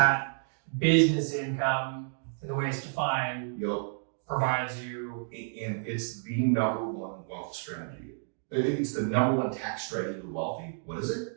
business income, the way it's defined, provides you. And it's the number one wealth strategy. It's the number one tax strategy of the wealthy. What is it?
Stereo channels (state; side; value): silent; left; digital silence